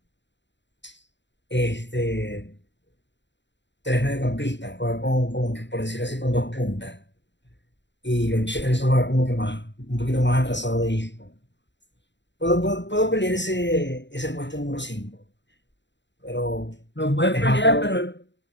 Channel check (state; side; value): late; right; 0.52 ms